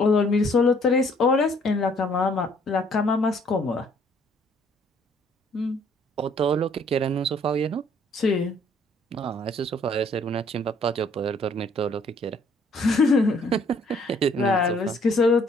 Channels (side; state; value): both; normal; correlation 0.62